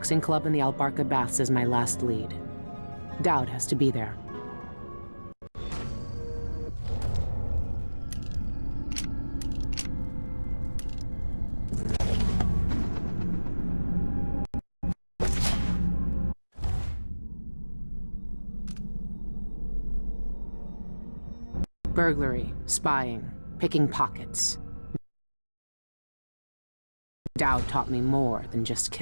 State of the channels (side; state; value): both; inverted; correlation -1.00